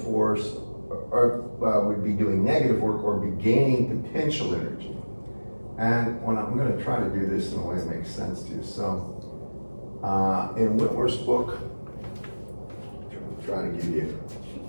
would be doing negative work or be gaining potential energy. And when I'm going to try to do this in a way that makes sense to you. So, in Whitworth's book, I'm trying to give you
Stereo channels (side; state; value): both; inverted; correlation -1.00